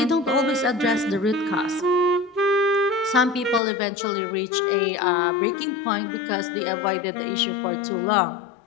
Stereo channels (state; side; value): drops out; right; at 3.6 s